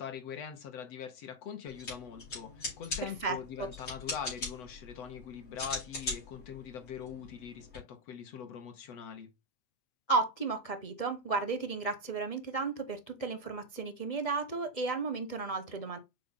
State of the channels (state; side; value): late; right; 8.0 ms